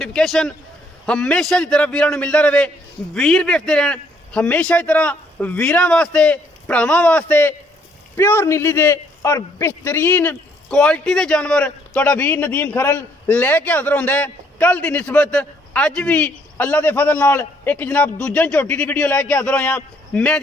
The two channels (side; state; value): both; normal; correlation 0.67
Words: हमेशा की तरह वीरां नूं मिलदा रहे। वीर वेखदे रहन हमेशा की तरह वीरां वास्ते भरावां वास्ते प्योर नीली दे और बेहतरीन क्वालिटी के जानवर तुहाडा वीर नदीम खरल लैके हाज़र होंदा है। कल की निस्बत अज भी अल्लाह के फजल नाल एक जनाब दूजन झोटी की वीडियो लैके हाज़र होया। मैं